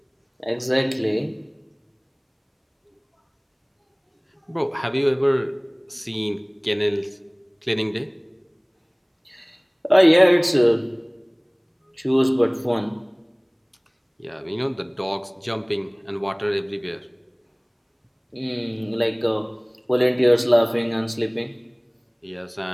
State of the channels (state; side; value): identical; both; correlation 1.00